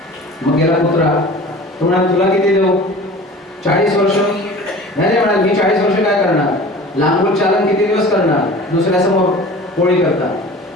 मग गेला कुत्रा. तो म्हणाला, तुला किती देऊ? 40 वर्ष. नाही म्हणाल, मी 40 वर्ष काय करणार, लांबून चालन किती दिवस करणार, दुसऱ्यासमोर पोळी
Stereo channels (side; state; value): both; normal; correlation 0.41